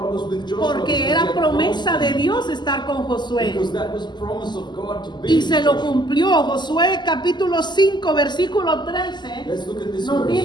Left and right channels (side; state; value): right; late; 0.21 ms